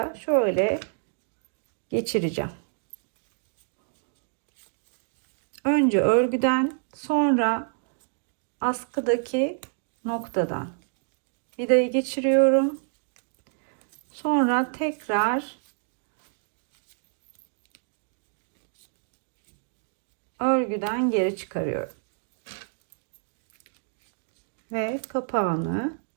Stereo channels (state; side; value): silent; left; digital silence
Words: şöyle geçireceğim. Önce örgüden, sonra askıdaki noktadan vidayı geçiriyorum. Sonra tekrar örgüden geri çıkarıyorum. Ve kapağını